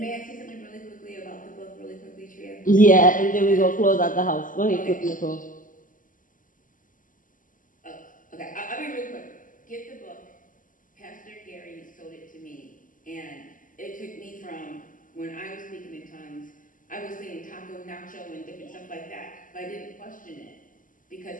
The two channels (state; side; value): late; right; 0.38 ms